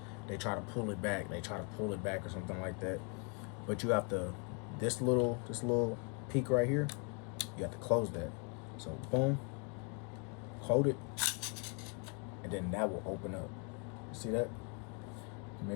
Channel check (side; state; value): right; quieter; 37.1 dB